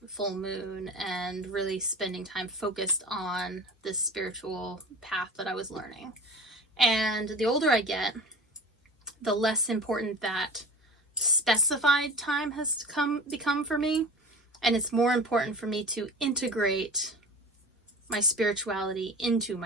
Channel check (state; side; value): normal; both; correlation 0.37